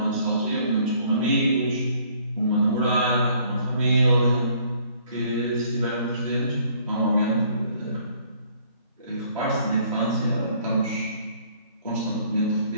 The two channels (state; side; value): inverted; both; correlation -0.61